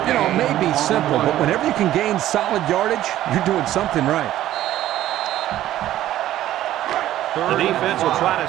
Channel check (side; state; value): left; quieter; 13.4 dB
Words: You know, it may be simple, but whenever you can gain solid yardage, you're doing something right. The defense will try to